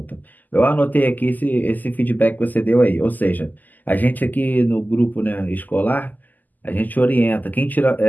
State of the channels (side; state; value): right; late; 0.084 ms